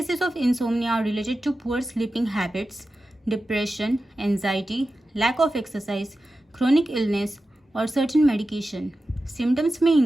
of insomnia are related to poor sleeping habits, depression, anxiety, lack of exercise, chronic illness, or certain medication. Symptoms may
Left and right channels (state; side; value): normal; both; correlation 0.93